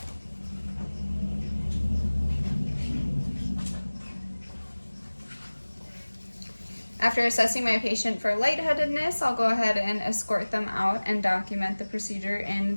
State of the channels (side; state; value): both; inverted; correlation -1.00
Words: After assessing my patient for lightheadedness, I'll go ahead and escort them out and document the procedure in